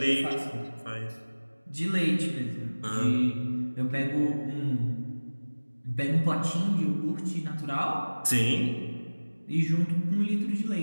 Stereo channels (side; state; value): both; inverted; correlation -1.00